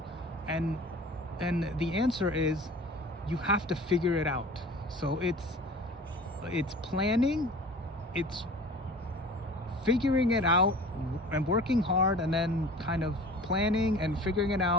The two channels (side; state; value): both; normal; correlation 0.41